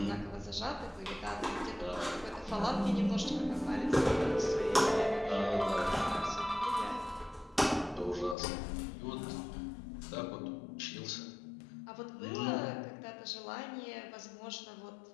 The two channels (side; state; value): right; drops out; at 8.3 s